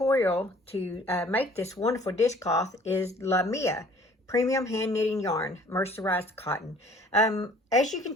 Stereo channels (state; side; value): normal; both; correlation 0.54